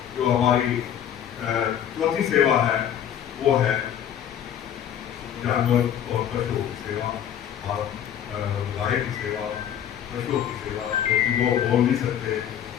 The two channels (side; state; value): right; quieter; 9.8 dB